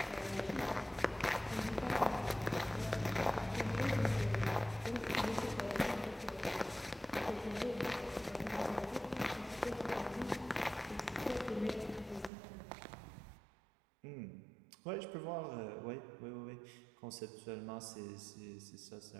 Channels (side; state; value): left; drops out; at 12.3 s